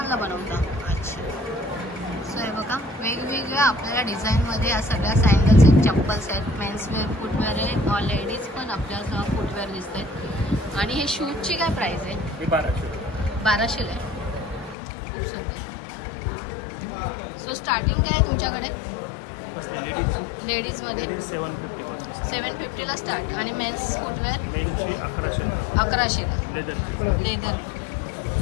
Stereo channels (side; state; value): right; drops out; at 14.8 s